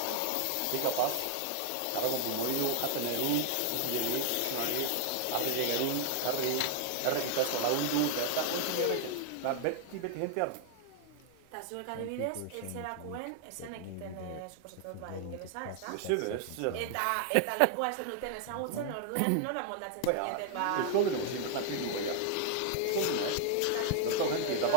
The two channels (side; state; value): both; different; correlation 0.00